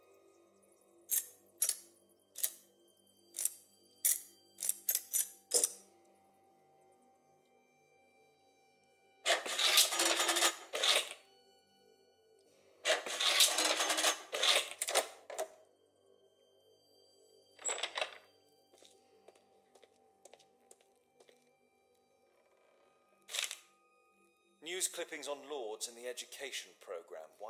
News clippings on Lords in the education program.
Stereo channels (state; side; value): identical; both; correlation 1.00